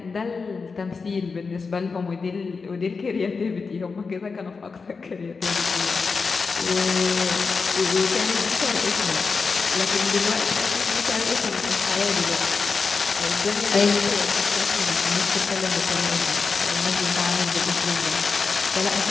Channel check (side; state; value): right; quieter; 4.7 dB